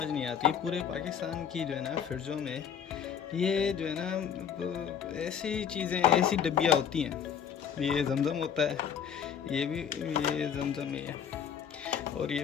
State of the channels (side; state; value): right; quieter; 8.1 dB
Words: नहीं आती, पूरे पाकिस्तान की जो है ना फ्रिजों में ये जो है ना ऐसी चीज़ें, ऐसी डब्बियाँ होती हैं। ये जमजम होता है, ये जमजम ही है, और ये